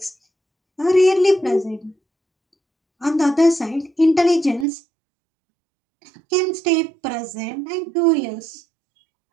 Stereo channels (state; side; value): drops out; left; at 4.7 s